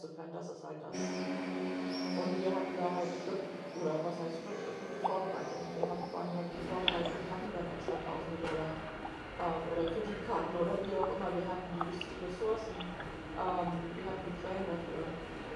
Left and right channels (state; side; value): identical; both; correlation 1.00